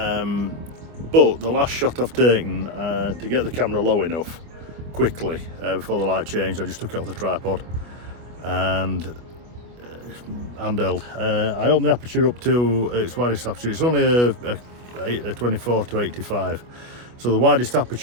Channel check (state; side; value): late; left; 25 ms